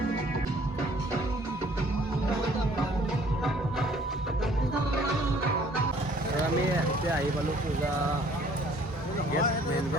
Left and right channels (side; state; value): both; normal; correlation 0.58